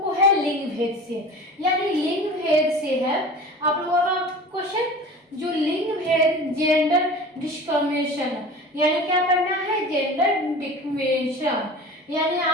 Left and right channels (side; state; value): both; normal; correlation 0.38